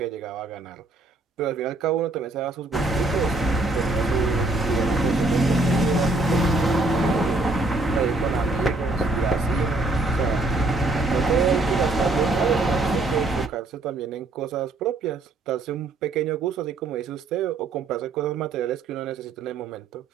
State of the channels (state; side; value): quieter; left; 3.0 dB